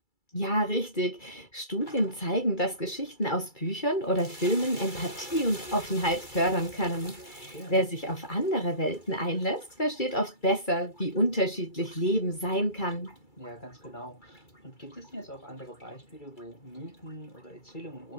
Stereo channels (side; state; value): right; late; 2.3 ms